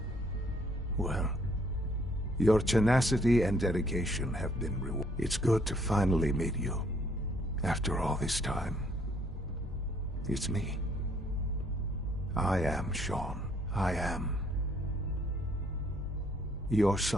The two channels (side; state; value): both; normal; correlation 0.65